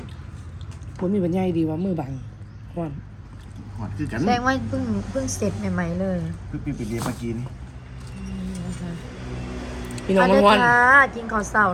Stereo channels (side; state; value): both; identical; correlation 1.00